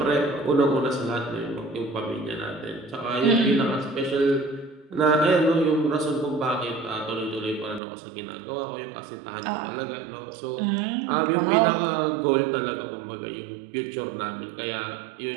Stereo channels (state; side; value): drops out; left; at 7.8 s